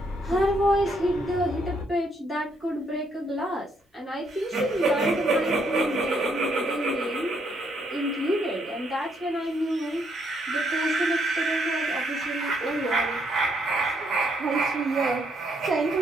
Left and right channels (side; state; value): both; normal; correlation 0.73